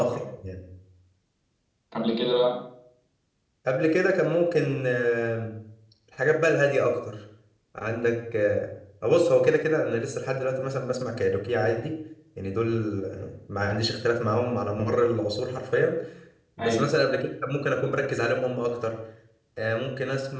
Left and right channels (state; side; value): identical; both; correlation 1.00